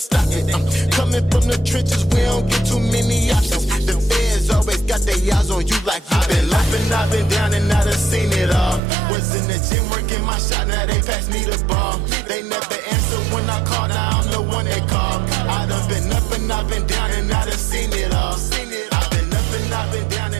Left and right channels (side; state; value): left; drops out; at 8.8 s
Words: it. Coming from the trenches, we don't get too many options. The feds always got their eyes on you like you been up and I've been down and I done seen it all. Was in the gym working my shot, now they pass me the ball. They never answer when I call, now I'm the one they call. I done been up and I've been down and I done seen it all. I've been up and I've been down